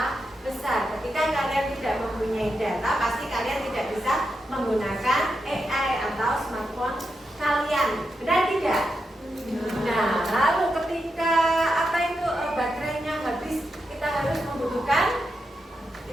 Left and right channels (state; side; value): normal; both; correlation 0.86